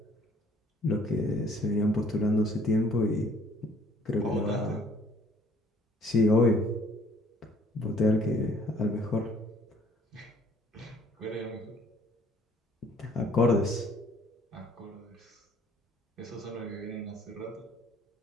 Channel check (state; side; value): normal; both; correlation 0.58